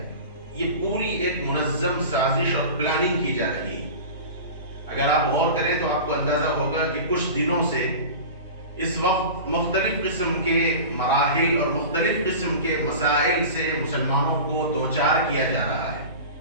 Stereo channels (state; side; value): inverted; both; correlation -0.33